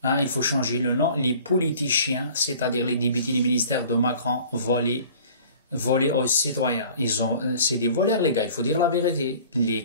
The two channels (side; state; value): both; inverted; correlation -0.47